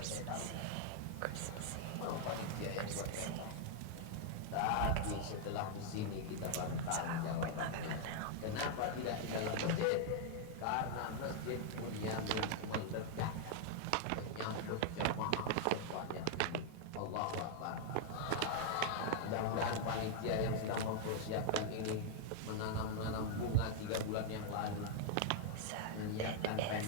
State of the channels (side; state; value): both; different; correlation -0.01